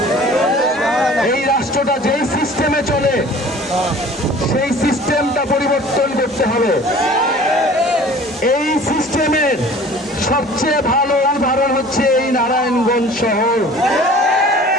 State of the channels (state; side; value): normal; both; correlation 0.46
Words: এই রাষ্ট্রটা যেই সিস্টেমে চলে সেই সিস্টেমটা পরিবর্তন করতে হবে। এই সিস্টেমের সবচেয়ে ভালো উদাহরণ হচ্ছে এই নারায়ণগঞ্জ শহর,